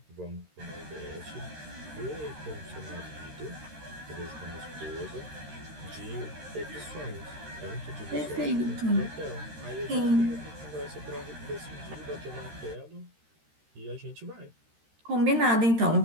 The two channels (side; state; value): left; late; 13 ms